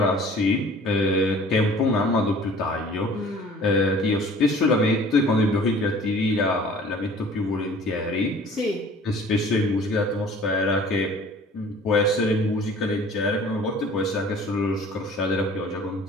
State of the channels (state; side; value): normal; both; correlation 0.49